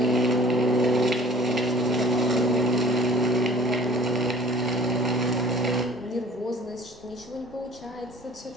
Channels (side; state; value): both; normal; correlation 0.48